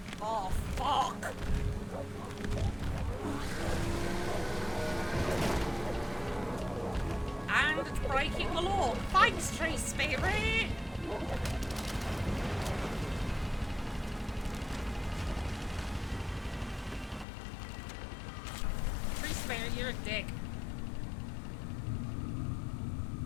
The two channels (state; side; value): drops out; right; at 17.2 s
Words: Oh, fuck! And it's breaking the law. Thanks, tree spirit! Tree spirit, you're a dick.